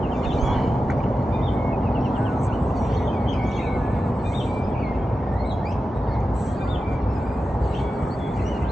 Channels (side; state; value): both; normal; correlation 0.92